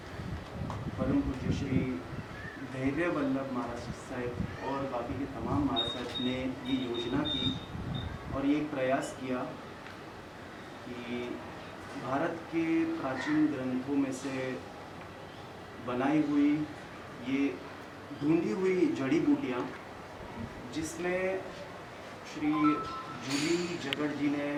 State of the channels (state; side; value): identical; both; correlation 1.00